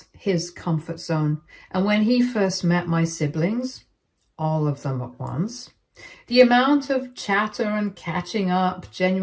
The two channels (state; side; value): identical; both; correlation 1.00